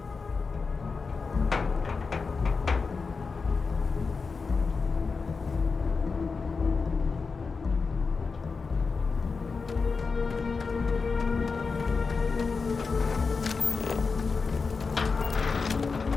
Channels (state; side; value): quieter; right; 4.7 dB